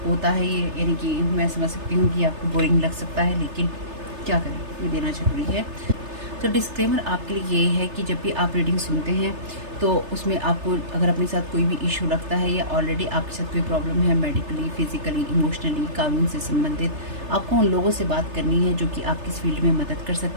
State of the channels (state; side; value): late; left; 3.3 ms